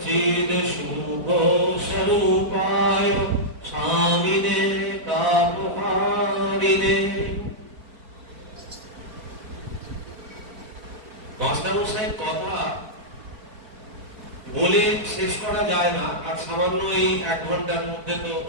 শুভ স্বরূপায় স্বামিনে তাপহারিণে। মাস্টারমশাইয়ের কথা বলে শেষ করা যায় না, আর সামান্য এই 1 ঘন্টার মধ্যে তো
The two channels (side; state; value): left; late; 4.5 ms